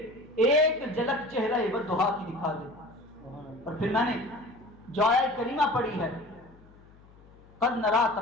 ایک جھلک چہرہ والضحیٰ کی دکھا دے۔ اور پھر میں نے جو آیت کریمہ پڑھی ہے، قد نرا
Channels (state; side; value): noise; left; hum, 25 dB below the sound